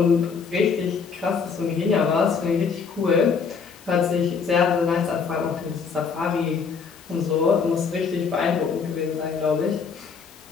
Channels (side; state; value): right; quieter; 5.7 dB